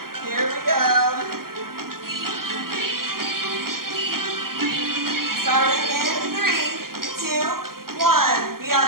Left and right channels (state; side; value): late; left; 0.92 ms